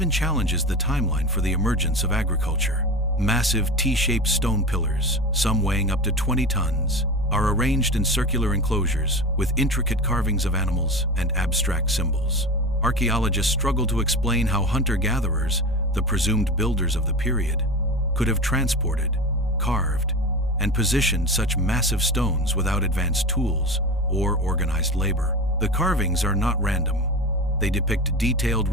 challenges the timeline for the emergence of agriculture. Massive T-shaped stone pillars, some weighing up to 20 tons, are arranged in circular enclosures with intricate carvings of animals and abstract symbols. Archaeologists struggle to explain how hunter-gatherers, the presumed builders of the period, could have transported, carved, and positioned such massive stones without advanced tools or organized labor. The carvings are not random. They depict detailed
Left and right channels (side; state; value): both; normal; correlation 0.28